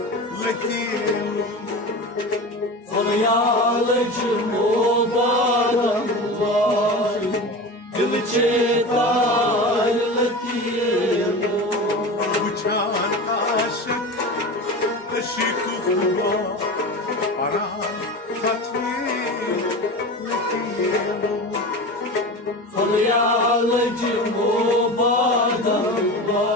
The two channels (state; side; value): normal; both; correlation 0.29